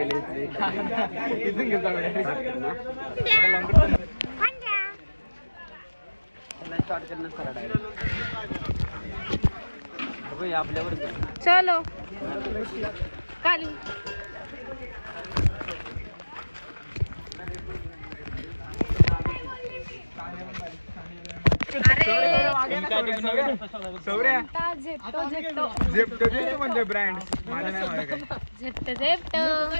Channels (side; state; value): both; inverted; correlation -1.00